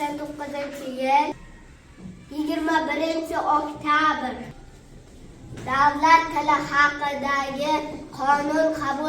21-oktyabr Davlat tili haqidagi qonun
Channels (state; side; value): identical; both; correlation 1.00